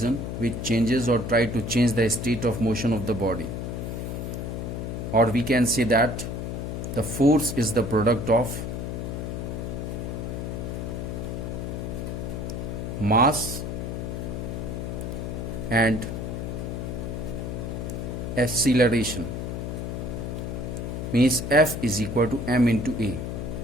which changes or try to change the state of motion of the body. Or we can say that the force is the product of mass and acceleration. Means F is equal to m into A.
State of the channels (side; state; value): left; noise; hum, 4 dB below the sound